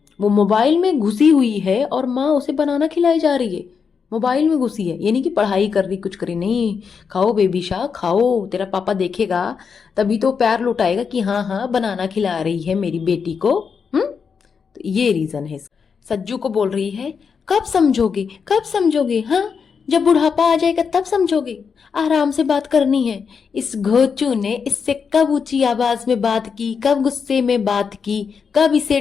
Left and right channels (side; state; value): right; quieter; 6.1 dB